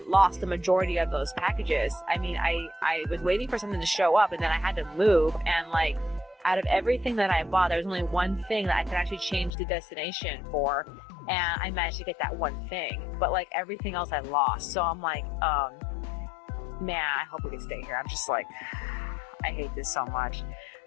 lost the majority of those packages. I mean, I was waiting for something to show up, and then I had to move, and like out of everything that I bought, there was only one thing that I could actually change the destination for, and I managed to get that one thing, but like everything else I lost. So I'm like, man, I hope we can stay here. I'm just like, I hate this so much.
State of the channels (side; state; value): right; drops out; at 9.5 s